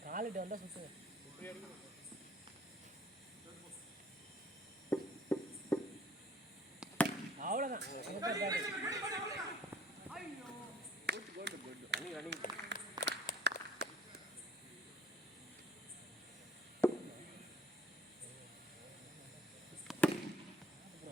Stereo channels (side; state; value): both; normal; correlation 0.55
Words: காலிட்டு வந்தால் சுற்றுங்க. அவ்வளோதான்.